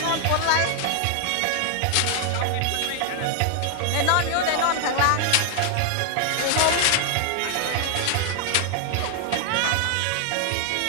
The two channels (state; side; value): different; both; correlation 0.00